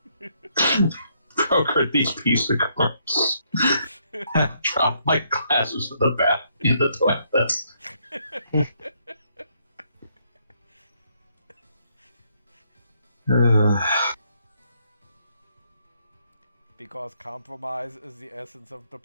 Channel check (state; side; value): inverted; both; correlation -0.72